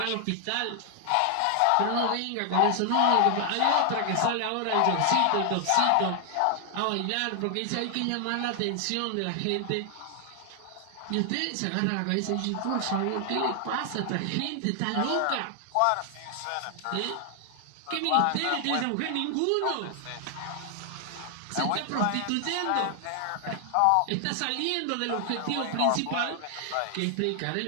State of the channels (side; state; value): both; different; correlation 0.00